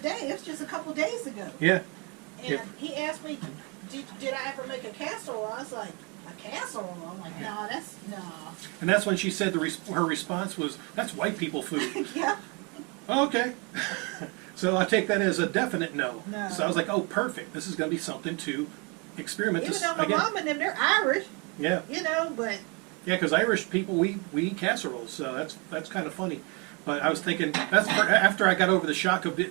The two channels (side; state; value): left; quieter; 31.3 dB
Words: It was just a couple days ago. Yeah. And Yep. he asked me, did I ever make a casserole? I was like, a casserole? I'm like, no, no. And that's when she said her response was, "That's white people food." Yeah. Okay. So I take that as a definite no. No. So I was like, oh, perfect. This is going to be something to experiment. Even though my mom and them, they're Irish. Yeah. You know, but. Yeah, because Irish people, we eat casseroles, so that's kind of funny. But I was thinking, after I got over the shock of